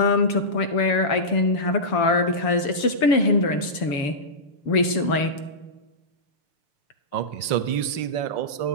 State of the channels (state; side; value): late; right; 7.3 ms